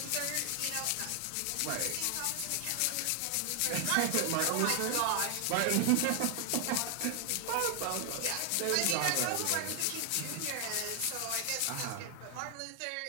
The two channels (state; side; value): different; both; correlation 0.00